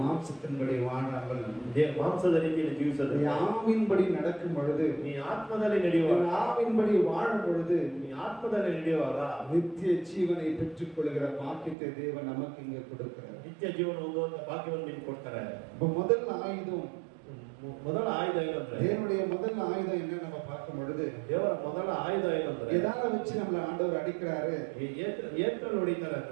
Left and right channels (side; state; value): left; drops out; at 11.8 s